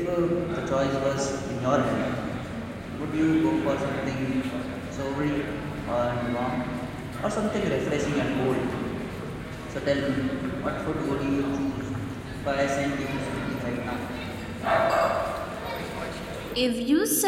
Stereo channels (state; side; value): identical; both; correlation 1.00